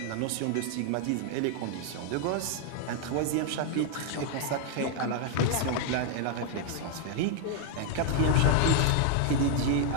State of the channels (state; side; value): different; both; correlation 0.00